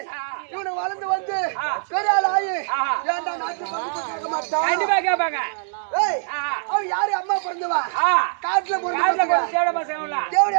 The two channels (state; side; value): silent; left; 64 dB below the other